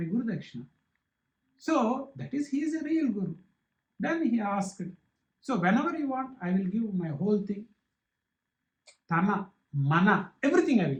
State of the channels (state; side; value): identical; both; correlation 1.00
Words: Guru Dakshina. So that is, he is a real Guru. Then he asked, so whenever you want, I will give my whole thing. Tana, Mana, everything I will